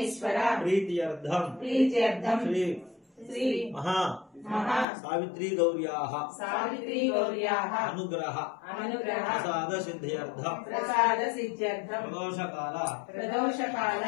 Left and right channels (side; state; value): right; drops out; at 4.9 s